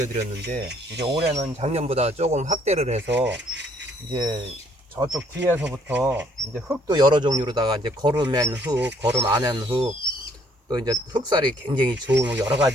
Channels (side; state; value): both; normal; correlation 0.64